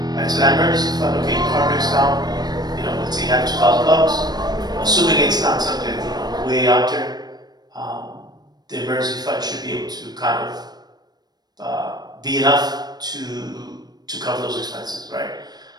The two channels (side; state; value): left; late; 0.19 ms